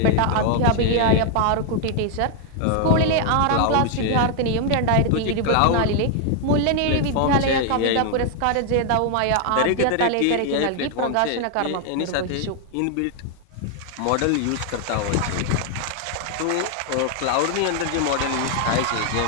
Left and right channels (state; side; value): different; both; correlation 0.00